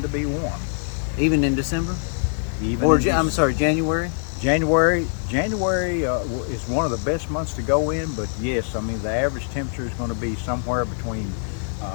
to be warm. Even in December? I'm sorry, January? January is one of the best months to go in, but yes, I mean the average temperature is going to be somewhere between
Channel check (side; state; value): right; silent; digital silence